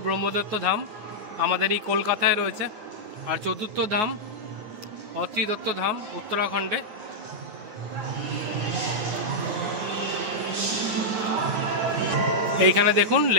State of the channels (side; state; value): left; late; 9.3 ms